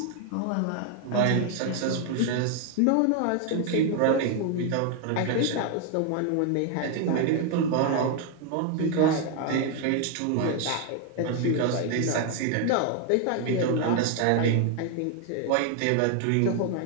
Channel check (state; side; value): different; both; correlation 0.01